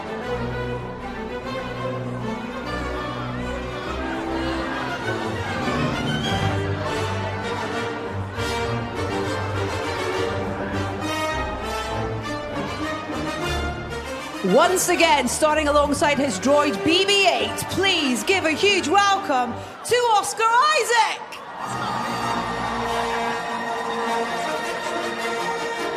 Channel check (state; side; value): identical; both; correlation 1.00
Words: Once again, starting alongside his droid BB-8, please give a huge welcome to Oscar Isaac.